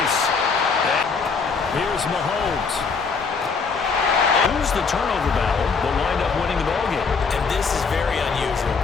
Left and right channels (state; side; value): quieter; right; 5.0 dB